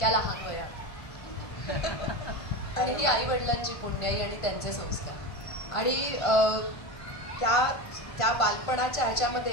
लहान वयात. आणि ही आई वडिलांची पुण्याई आणि त्यांचे संस्कार. आणि त्या बालपणाच्या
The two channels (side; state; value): right; late; 1.5 ms